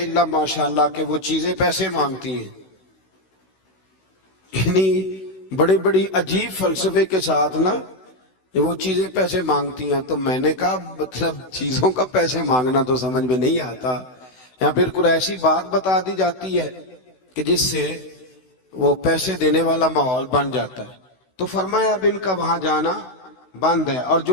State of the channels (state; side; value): late; right; 16 ms